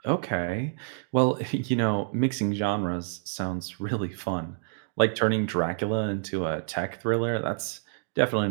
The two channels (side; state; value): left; silent; digital silence